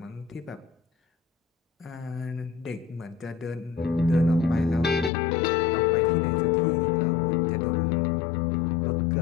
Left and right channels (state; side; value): drops out; right; at 5.1 s